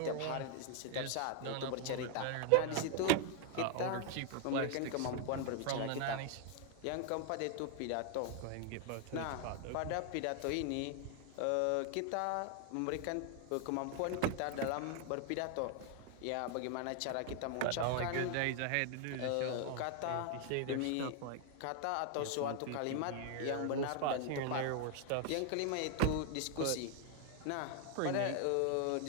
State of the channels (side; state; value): both; different; correlation 0.00